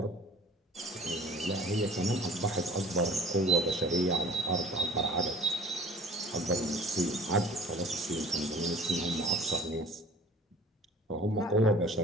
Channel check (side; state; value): both; normal; correlation 0.46